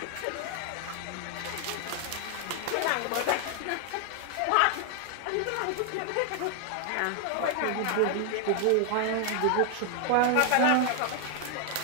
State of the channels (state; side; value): different; both; correlation 0.00